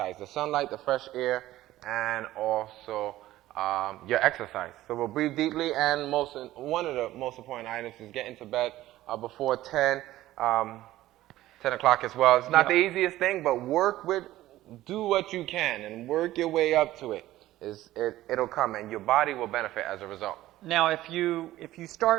the sunlight, the fresh air, and also your exercise. So we'll breathe deeply, and one of the most important items is get into bed before 10 o'clock as well. It's not the easiest thing, but do what you can and work your way up to it. It'll come, and your body will benefit as a result. Now, if you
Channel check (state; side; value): quieter; left; 15.3 dB